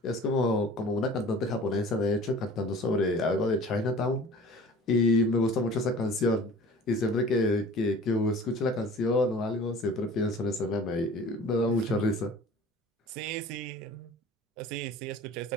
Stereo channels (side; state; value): both; normal; correlation 0.44